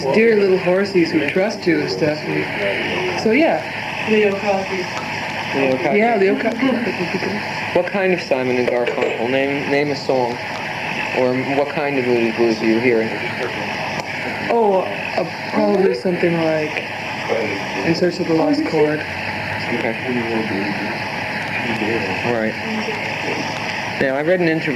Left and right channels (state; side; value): identical; both; correlation 1.00